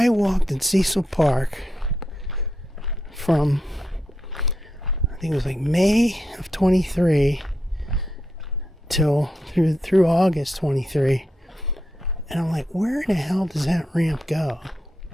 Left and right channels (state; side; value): normal; both; correlation 0.84